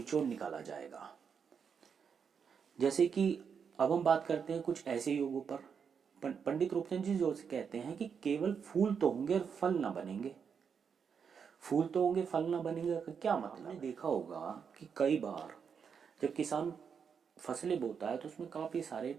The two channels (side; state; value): left; quieter; 6.6 dB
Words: निकाला जाएगा। जैसे कि अब हम बात करते हैं कुछ ऐसे योगों पर। पंडित रूपचंद जी जो कहते हैं कि केवल फूल तो होंगे और फल ना बनेंगे। फूल तो होंगे, फल ना बनेंगे का क्या मतलब? आपने देखा होगा कि कई बार जब किसान फसलें बोता है तो उसमें काफी सारे